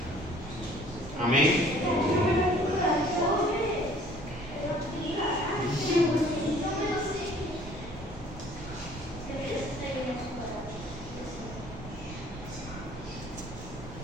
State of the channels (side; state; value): right; noise; rumble, 13 dB below the sound